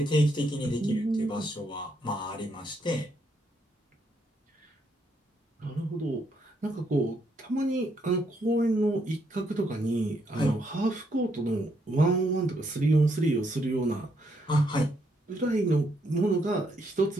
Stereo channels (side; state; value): both; normal; correlation 0.75